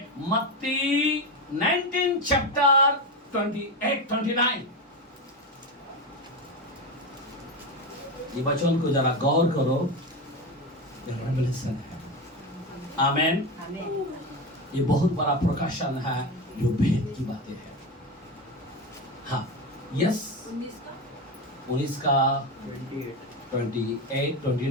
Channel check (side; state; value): both; normal; correlation 0.17